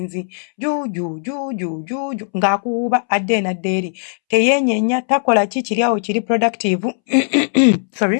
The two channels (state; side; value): silent; right; 67 dB below the other